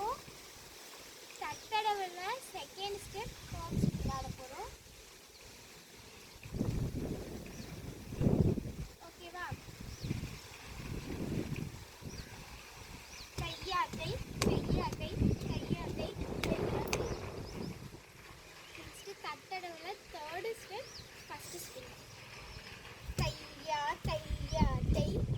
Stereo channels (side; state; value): both; identical; correlation 1.00